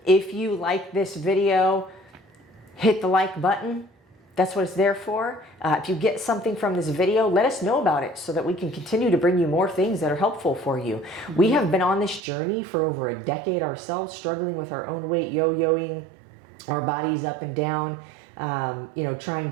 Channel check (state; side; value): drops out; left; at 12.2 s